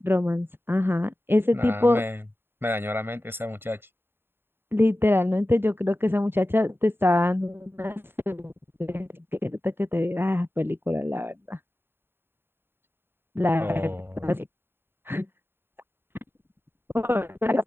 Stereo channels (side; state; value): left; late; 0.11 ms